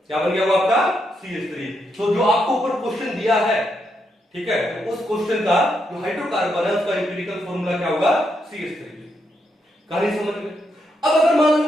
क्या बन गया वो आपका CH3। तो जो आपको ऊपर क्वेश्चन दिया है, ठीक है, तो उस क्वेश्चन का जो हाइड्रोकार्बन है उसका इंपिरिकल फॉर्मूला क्या होगा, CH3। कहानी समझ में? अब अगर मान लो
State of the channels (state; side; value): normal; both; correlation 0.80